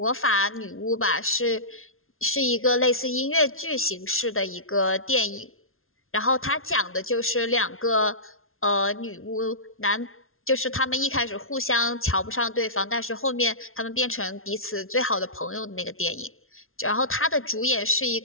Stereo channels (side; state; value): right; late; 0.61 ms